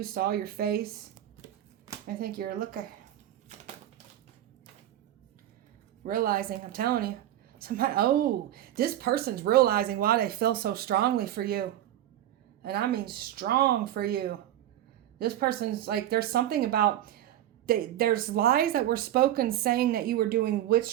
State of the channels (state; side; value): quieter; left; 12.5 dB